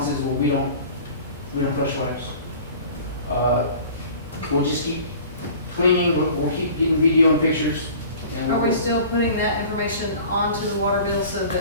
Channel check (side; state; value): both; inverted; correlation -0.44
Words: is, well, we don't flush wipes. We'll just keep cleaning, we'll keep getting video and pictures. And Are we still putting that information onto the water bill so